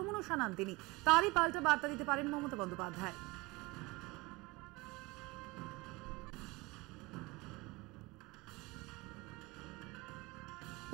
শানান তিনি, তারই পাল্টা বার্তা দিতে পারেন মমতা বন্দ্যোপাধ্যায়।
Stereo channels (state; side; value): quieter; left; 22.8 dB